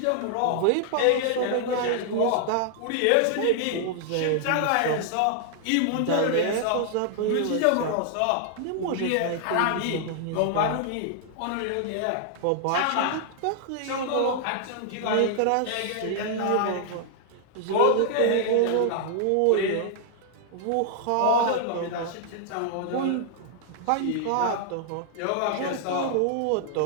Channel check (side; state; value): both; different; correlation -0.01